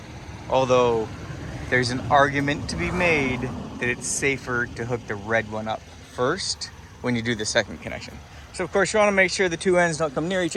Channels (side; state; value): both; identical; correlation 1.00